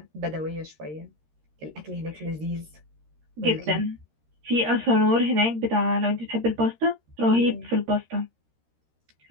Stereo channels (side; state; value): left; late; 13 ms